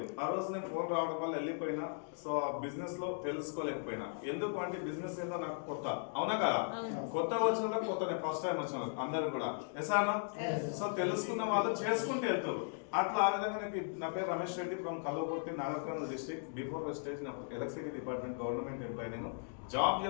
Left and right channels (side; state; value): right; silent; digital silence